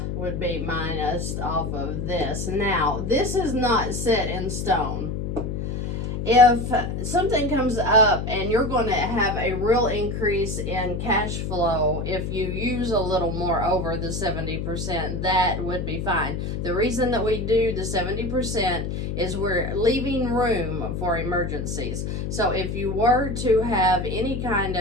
would be minus off of this. Now, this is not set in stone. If something comes up and you're going to have a real increase in cash flow, if you use a little more over the 70%, that would be fine. The reason that we do the 70% is we're leaving room for emergencies. So if you were to have any kind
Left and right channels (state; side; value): noise; left; hum, 3 dB below the sound